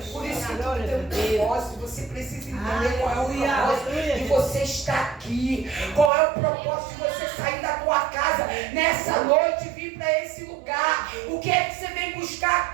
tu tem um propósito, você precisa entender qual é o Aleluia. propósito de você estar aqui. Qual é o propósito de você sair da tua casa nessa noite e vir para esse lugar. O que é que você vem buscar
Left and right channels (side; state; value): left; drops out; at 6.1 s